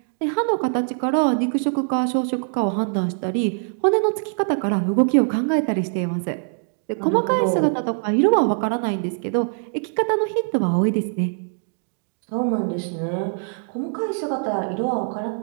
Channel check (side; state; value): left; silent; digital silence